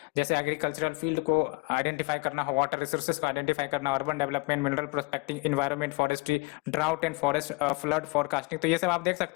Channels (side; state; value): right; quieter; 27.9 dB